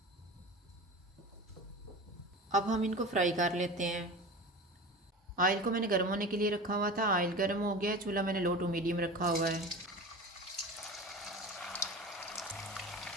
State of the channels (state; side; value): normal; both; correlation 0.32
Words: अब हम इनको फ्राई कर लेते हैं। ऑयल को मैंने गर्म होने के लिए रखा हुआ था। ऑयल गर्म हो गया। चूल्हा मैंने लो टू मीडियम रखा हुआ है।